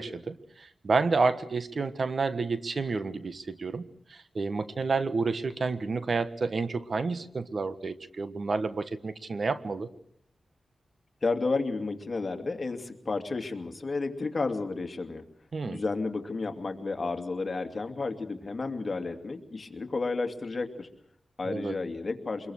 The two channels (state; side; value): normal; both; correlation 0.90